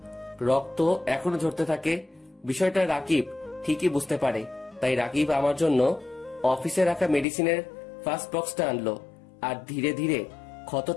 রক্ত এখনো ঝরতে থাকে। বিষয়টা রাকিব ঠিকই বুঝতে পারে, তাই রাকিব আমার জন্য অফিসে রাখা মেডিসিনের ফার্স্ট বক্সটা আনলো আর ধীরে ধীরে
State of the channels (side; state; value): right; drops out; at 7.2 s